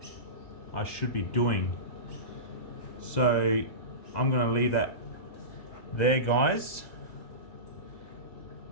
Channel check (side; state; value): right; late; 2.0 ms